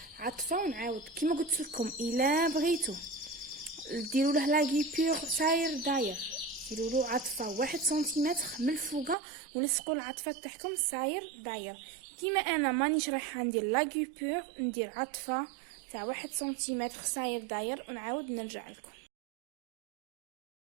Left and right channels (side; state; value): left; drops out; at 9.2 s